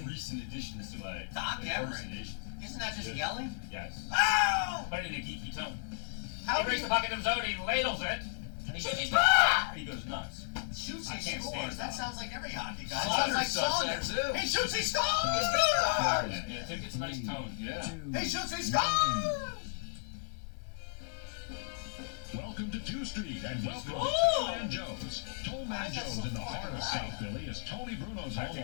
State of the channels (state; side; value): silent; right; digital silence